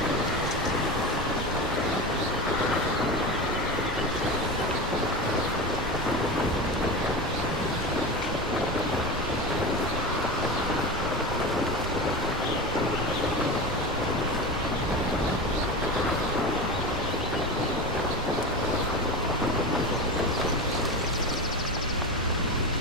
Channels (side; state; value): both; normal; correlation 0.25